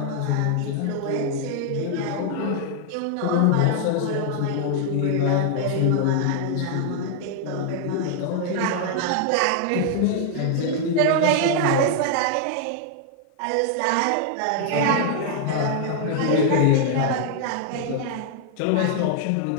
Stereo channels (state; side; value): different; both; correlation 0.00